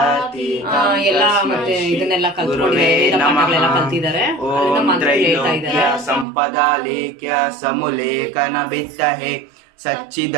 ಎಲ್ಲ ಮತ್ತೆ ಇದನ್ನೆಲ್ಲ ಕಲ್ತ್ಕೊಂಡಿದ್ದಾರೆ, ಕಲ್ತಿದ್ದಾರೆ. ಓಂ ತ್ರೈಲೋಕ್ಯ ಸಂಪದಾ ಲೇಖ್ಯ ಸಮುಲೇಖನ ಬಿತ್ತಹೆ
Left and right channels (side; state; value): left; drops out; at 6.2 s